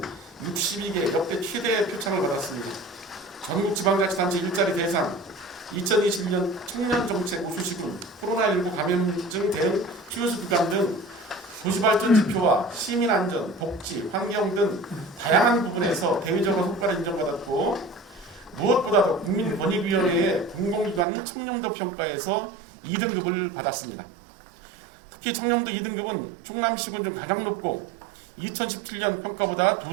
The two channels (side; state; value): left; drops out; at 21.1 s